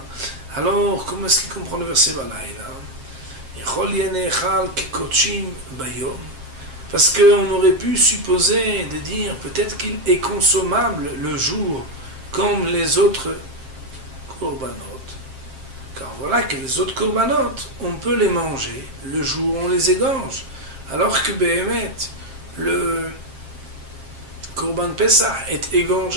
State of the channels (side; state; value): left; late; 7.5 ms